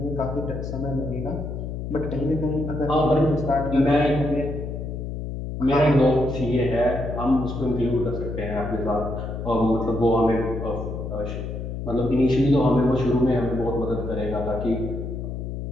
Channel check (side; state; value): left; noise; hum, 6 dB below the sound